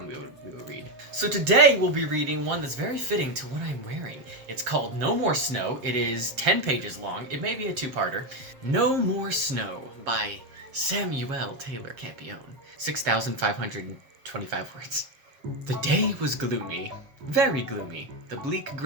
we will read. So today we'll be reading one that's very fitting to what I'm wearing. It's called No More Snow. It is 10 pages long. It may be a 2-parter. No More Snow by Samuel Taylor Campion. 6,525 words. The day was gloomy. Very gloomy. The bleak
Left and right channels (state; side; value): late; left; 7.4 ms